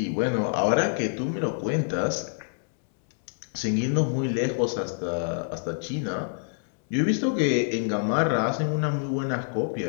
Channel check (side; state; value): right; silent; 61 dB below the other